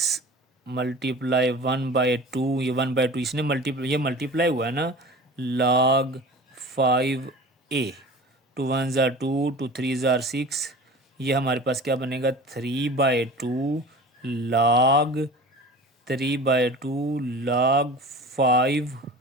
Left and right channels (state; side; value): normal; both; correlation 0.38